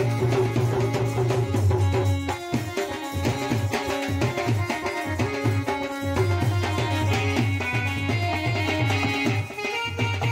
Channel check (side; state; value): both; identical; correlation 1.00